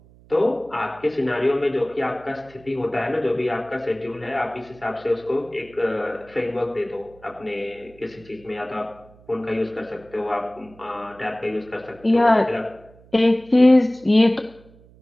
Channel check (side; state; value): right; noise; hum, 26 dB below the sound